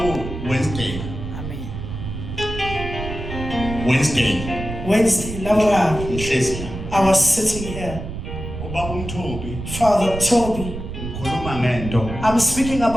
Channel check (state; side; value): noise; right; rumble, 8 dB below the sound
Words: Wednesday Amen. Wednesday, Laura. ngihlezi la I was sitting here. ubaba uMthobi Father Toby, ngikhuluma ngento I'm speaking